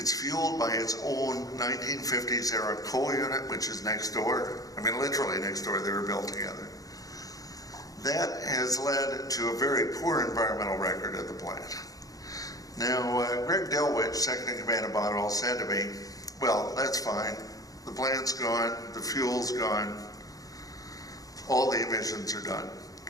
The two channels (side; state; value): right; late; 0.17 ms